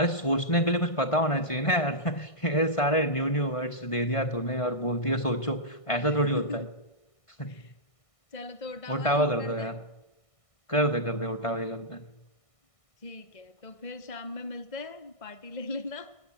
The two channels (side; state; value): right; late; 1.6 ms